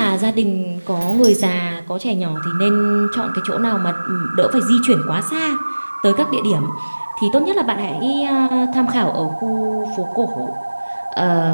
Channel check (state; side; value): inverted; both; correlation -1.00